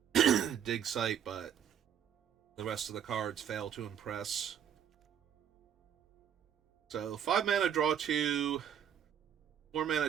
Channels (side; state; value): left; quieter; 9.1 dB